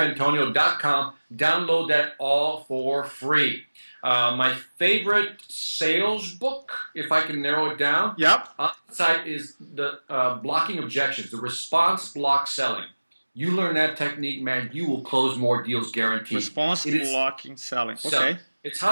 download that all for free. My favorite sales book, if I can narrow it down, on the site is the Blocking Objections, the Response Block Selling. You learn that technique, man, you will close more deals guaranteed. Response blocking selling. Okay. It's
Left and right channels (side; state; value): both; inverted; correlation -1.00